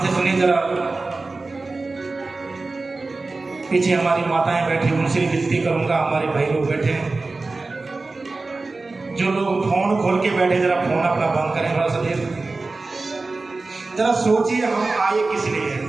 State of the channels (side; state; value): left; quieter; 3.5 dB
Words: से सुनिए जरा। पीछे हमारी माताएं बैठी, उनसे भी विनती करूंगा, हमारे भाई लोग बैठे हैं, जो लोग फोन खोल के बैठे, जरा फोन अपना बंद करें थोड़ा सा देर। जरा सोचिए हम आए किस लिए।